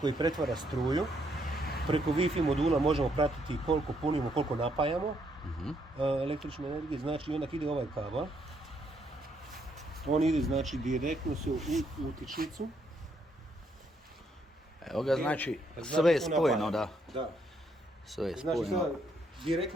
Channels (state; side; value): normal; both; correlation 0.73